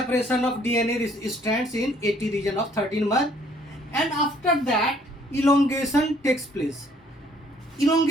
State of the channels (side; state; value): both; normal; correlation 0.61